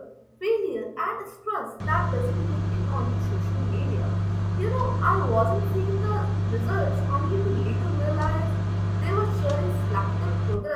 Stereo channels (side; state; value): both; identical; correlation 1.00